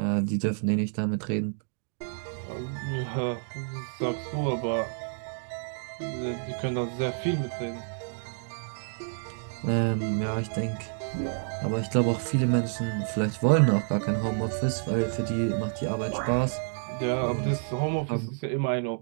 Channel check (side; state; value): left; silent; 59 dB below the other